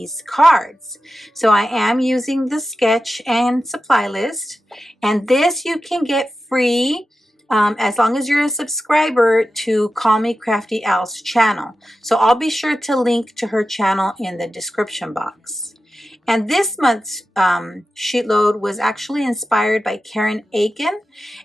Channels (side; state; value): both; normal; correlation 0.92